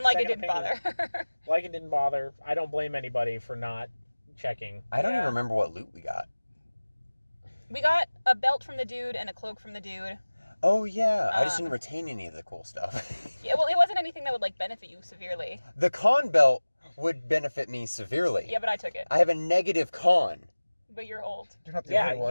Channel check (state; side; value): inverted; both; correlation -1.00